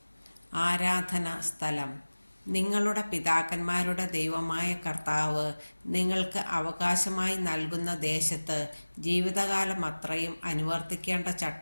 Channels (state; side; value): inverted; both; correlation -1.00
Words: ആരാധന സ്ഥലം. നിങ്ങളുടെ പിതാക്കന്മാരുടെ ദൈവമായ കർത്താവ് നിങ്ങൾക്ക് അവകാശമായി നൽകുന്ന ദേശത്ത് ജീവിതകാലം അത്രയും അനുവർത്തിക്കേണ്ട